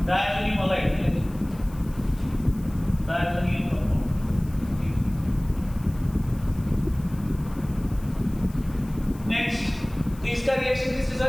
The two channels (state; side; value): noise; left; hiss, 23 dB below the sound